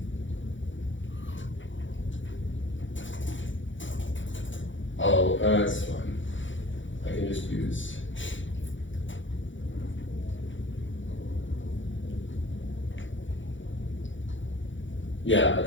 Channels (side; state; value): right; late; 0.56 ms